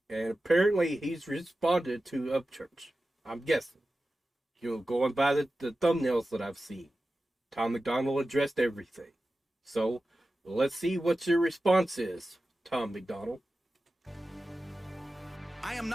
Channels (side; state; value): both; normal; correlation 0.94